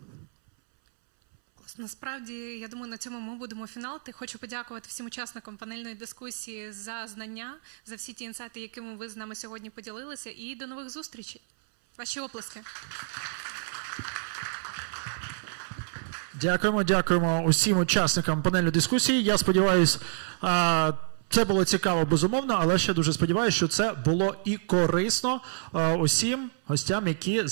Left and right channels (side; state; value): left; silent; 59 dB below the other